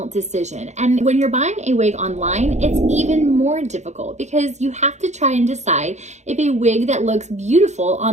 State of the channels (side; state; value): left; late; 0.33 ms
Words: decision, and when you're buying a wig online, it's even more difficult because you have to try and decide if a wig that looks beautiful